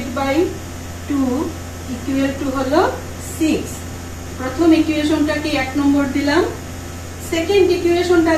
by 2 equal to হলো 6। প্রথম ইকুয়েশনটাকে 1 নম্বর দিলাম, সেকেন্ড ইকুয়েশনটা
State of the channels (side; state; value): both; identical; correlation 1.00